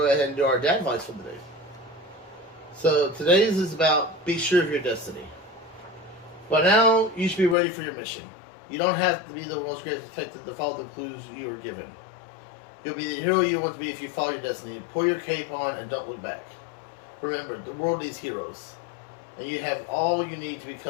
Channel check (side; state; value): right; drops out; at 7.6 s